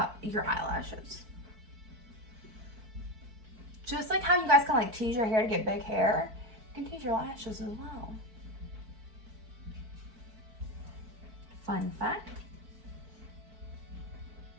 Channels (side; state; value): left; late; 4.5 ms